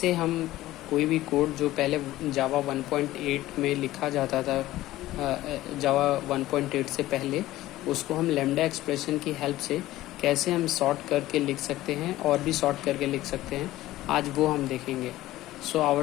हम कोई भी कोड जो पहले जावा 1.8 में लिखा जाता था, जावा 1.8 से पहले, उसको हम लैम्डा एक्सप्रेशन की हेल्प से कैसे हम सॉर्ट करके लिख सकते हैं और भी सॉर्ट करके लिख सकते हैं। आज वो हम देखेंगे। So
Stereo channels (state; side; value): quieter; right; 16.0 dB